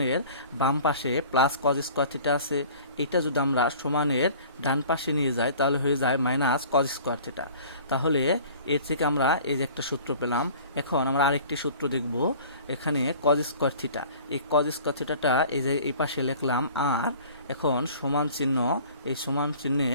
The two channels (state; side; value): inverted; both; correlation -0.47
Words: বাম পাশে প্লাস কজ স্কোয়ার থিটা আছে, এটা যদি আমরা সমানের ডান পাশে নিয়ে যাই তাহলে হয়ে যায় মাইনাস কজ স্কোয়ার থিটা। তাহলে এর থেকে আমরা এই যে একটা সূত্র পেলাম। এখন আমরা আরেকটি সূত্র দেখব, এখানে কজ স্কোয়ার থিটা, এই কজ স্কোয়ার থিটাটা এই যে এই পাশে লিখলাম, আর এখন সমান চিহ্ন, এই সমান